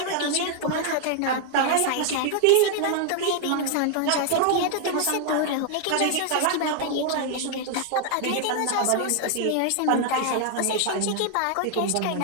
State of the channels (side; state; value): both; different; correlation 0.00